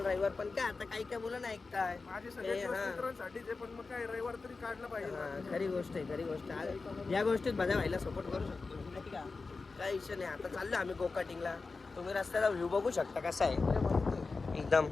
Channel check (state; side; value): quieter; right; 4.1 dB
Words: रविवार. पण काय आता काही काय मुलं नाही ऐकताय. माझे सगळे मित्रांसाठीच आहे पण मग काय रविवार तरी काढलं पाहिजे. खरी गोष्ट आहे, खरी गोष्ट आहे. या गोष्टीत माझ्या भाईला सपोर्ट करू शकतो नाही का, काही विषय नाही. आता चाललो आम्ही गोकाटिंगला. तुम्ही रस्त्याचा व्ह्यू बघू शकता कसा आहे एकदम.